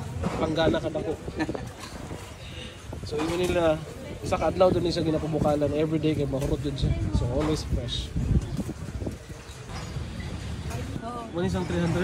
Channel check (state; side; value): identical; both; correlation 1.00